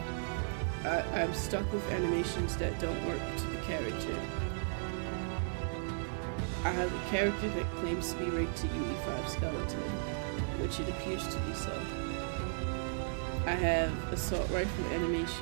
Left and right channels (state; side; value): silent; left; digital silence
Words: I'm stuck with animations that don't work to the character. I have a character that claims to be rigged to UE5 skeleton, which it appears to be so. I have assault rifle